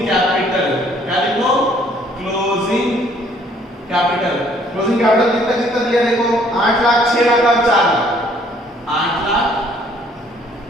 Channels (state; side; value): normal; both; correlation 0.61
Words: कैपिटल। क्या लिखो? Closing capital. क्लोजिंग कैपिटल कितना कितना दिया देखो? 8 लाख, 6 लाख और 4 लाख। 8 लाख,